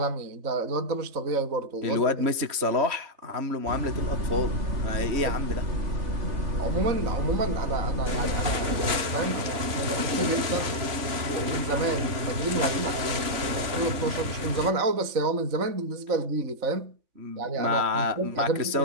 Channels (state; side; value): late; left; 3.5 ms